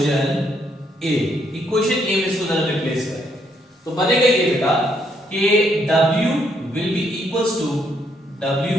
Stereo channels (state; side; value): normal; both; correlation 0.73